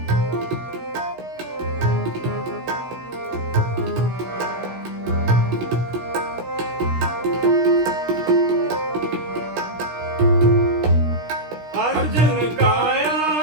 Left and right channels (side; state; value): left; late; 16 ms